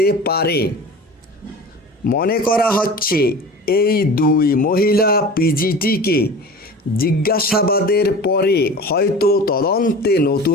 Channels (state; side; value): normal; both; correlation 0.37